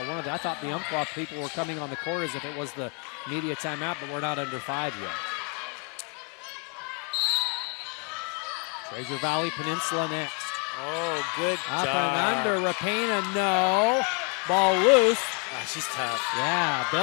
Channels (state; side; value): quieter; right; 36.9 dB